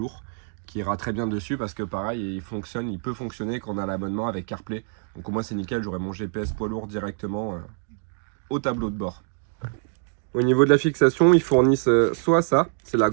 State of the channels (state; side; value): silent; left; 59 dB below the other